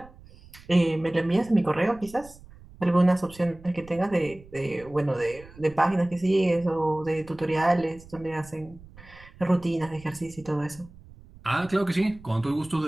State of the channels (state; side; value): noise; right; rumble, 21 dB below the sound